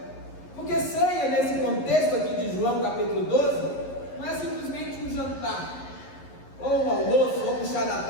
porque ceia nesse contexto aqui de João capítulo 12 não é simplesmente um jantar, ou um almoço, ou um chá da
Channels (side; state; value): right; late; 11 ms